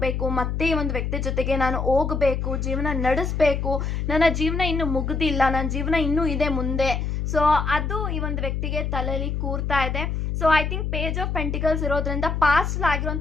ಮತ್ತೆ ಈ ಒಂದು ವ್ಯಕ್ತಿ ಜೊತೆಗೆ ನಾನು ಹೋಗಬೇಕು, ಜೀವನ ನಡೆಸಬೇಕು, ನನ್ನ ಜೀವನ ಇನ್ನು ಮುಗ್ದಿಲ್ಲ, ನನ್ನ ಜೀವನ ಇನ್ನೂ ಇದೆ ಮುಂದೆ. ಸೊ ಅದು ಈ ಒಂದು ವ್ಯಕ್ತಿಗೆ ತಲೆಯಲ್ಲಿ ಕೂರ್ತಾ ಇದೆ. So I think page of pentacles ಇರೋದ್ರಿಂದ ಪಾಸ್ಟ್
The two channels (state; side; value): noise; left; hum, 1 dB below the sound